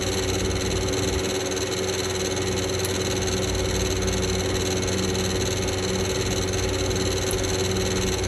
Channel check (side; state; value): both; identical; correlation 1.00